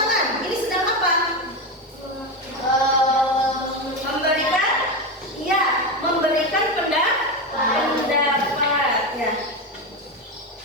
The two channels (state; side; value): normal; both; correlation 0.15